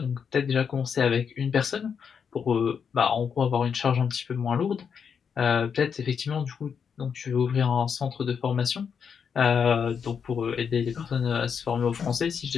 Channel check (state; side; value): quieter; right; 6.8 dB